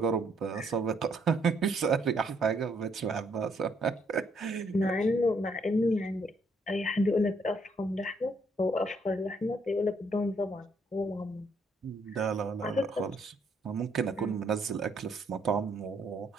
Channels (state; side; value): normal; both; correlation 0.70